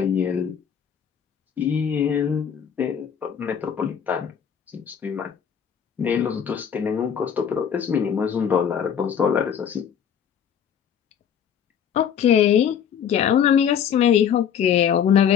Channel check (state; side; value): quieter; right; 8.2 dB